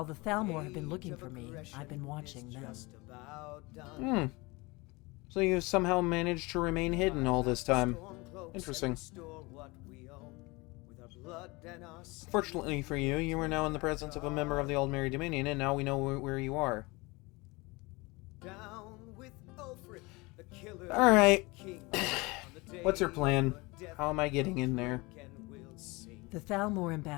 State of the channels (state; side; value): quieter; right; 24.6 dB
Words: the Thalmor have been looking for me, I've been watching them. So you've somehow managed to remain hidden all this time. Interesting. Fortunately for you, you are now in the presence of a member of the Old Merry Dominion, and now we know where you are. Alright. What's your plan? How am I getting in there? The Thalmor